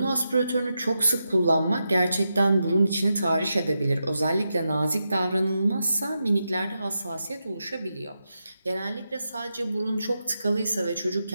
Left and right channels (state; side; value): inverted; both; correlation -0.87